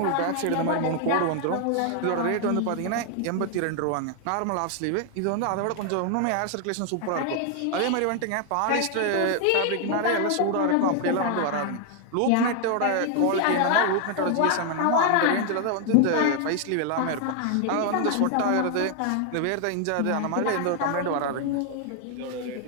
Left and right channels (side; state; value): both; different; correlation 0.00